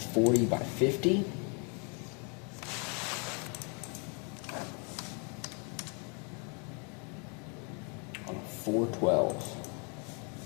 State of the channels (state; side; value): quieter; right; 36.0 dB